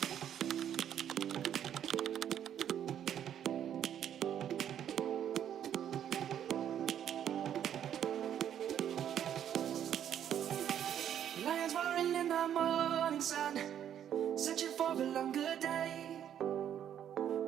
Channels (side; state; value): left; quieter; 9.8 dB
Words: Lions roaring in the morning sun, searching for a longer day.